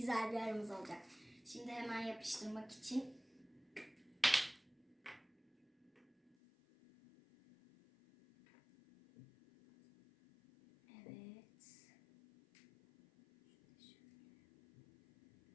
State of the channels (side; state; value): right; drops out; at 6.4 s